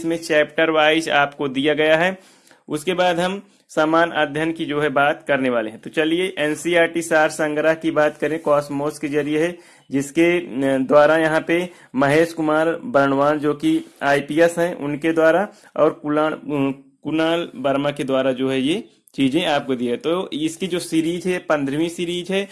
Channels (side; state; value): both; identical; correlation 1.00